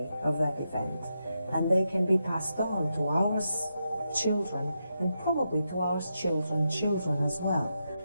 of that event, and they can be passed on to our children and probably to our children's children as well.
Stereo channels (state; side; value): inverted; both; correlation -0.85